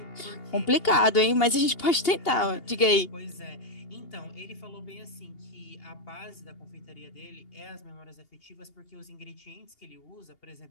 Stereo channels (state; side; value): late; right; 2.8 ms